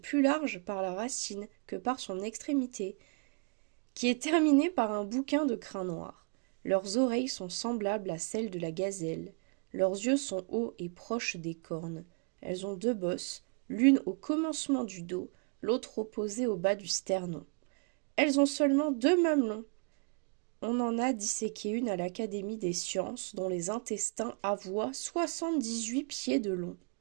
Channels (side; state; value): left; quieter; 36.0 dB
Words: large par la racine que par son extrémité, qui est terminée par un bouquin de crin noir. Leurs oreilles sont semblables à celles de la gazelle. Leurs yeux sont hauts et proches des cornes. Elles ont 2 bosses, l'une au commencement du dos, l'autre opposée au bas du sternon. Elles ont seulement 2 mamelons. On en a disséqué une à l'Académie des sciences, dont les intestins avoient 78 pieds de long.